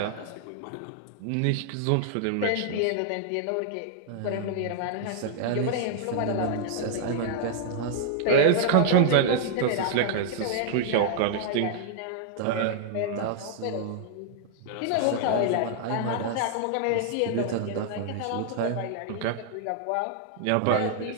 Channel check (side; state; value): both; different; correlation 0.00